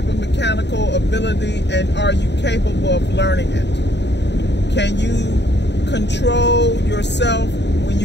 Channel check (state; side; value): late; right; 0.50 ms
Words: of mechanical ability, and are you capable of learning it? Can you control yourself when